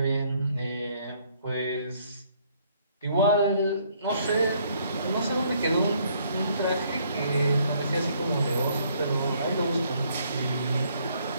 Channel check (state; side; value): inverted; both; correlation -0.66